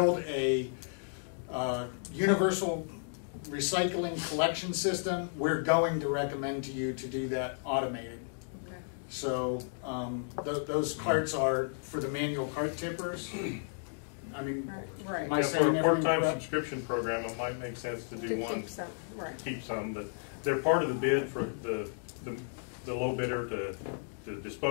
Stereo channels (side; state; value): right; silent; digital silence